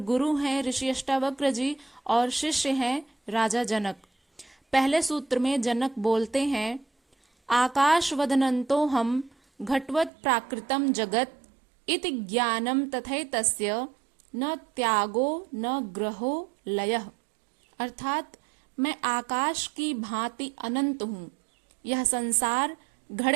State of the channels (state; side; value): drops out; left; at 10.1 s